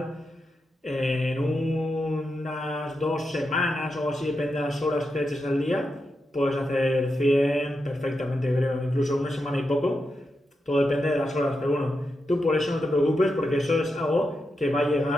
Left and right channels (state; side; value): normal; both; correlation 0.87